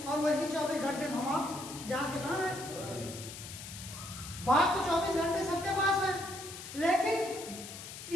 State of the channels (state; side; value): noise; left; hiss, 11 dB below the sound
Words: और वही 24 घंटे में हम आप जहाँ के कहाँ है। बात तो 24 घंटे सबके पास है, लेकिन